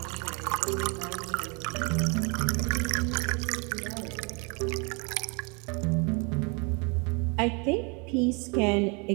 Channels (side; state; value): left; quieter; 32.3 dB